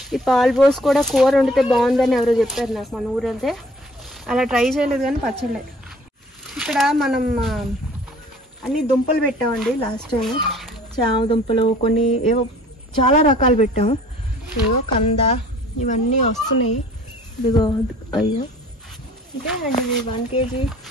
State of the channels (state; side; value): normal; both; correlation 0.52